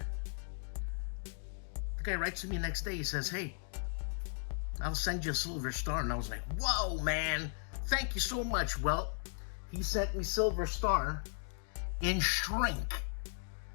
The guy writes to me next day, he says, hey, I'll send you a Silver Star. And I was like, whoa, man, thank you so much. Well, he sent me Silver Star in shrink.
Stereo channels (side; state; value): right; silent; digital silence